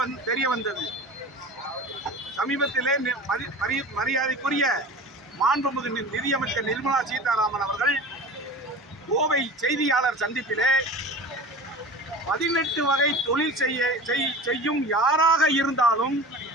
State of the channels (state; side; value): normal; both; correlation 0.35